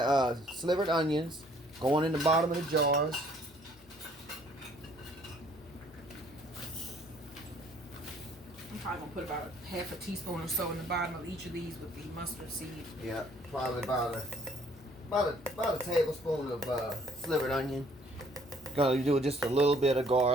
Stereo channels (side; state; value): both; normal; correlation 0.61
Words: slivered onions going in the bottom of the jars. I'm probably going to put about half a teaspoon or so in the bottom of each of these with the mustard seed. Yeah, probably about a tablespoon of slivered onion. Gonna do just a little bit of